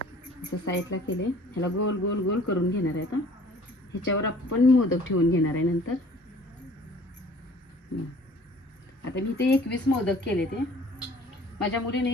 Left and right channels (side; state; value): both; normal; correlation 0.51